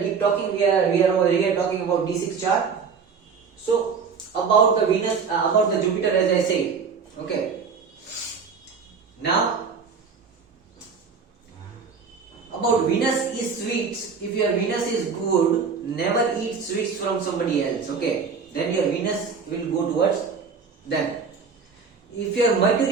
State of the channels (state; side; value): quieter; left; 5.6 dB